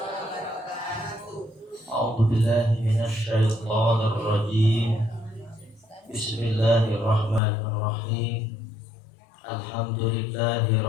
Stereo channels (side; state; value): right; drops out; at 7.4 s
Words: A'udzu billahi minasyaitonir rajim. Bismillahirrahmanirrahim. Alhamdulillahi